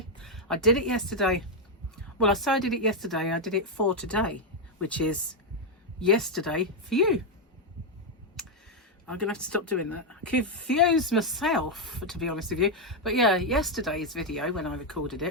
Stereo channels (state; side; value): normal; both; correlation 0.01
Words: Well, I say I did it yesterday. I did it for today, which is yesterday for you. I'm going to have to stop doing that. I confuse myself, to be honest with you. But yeah, yesterday's video, when I recorded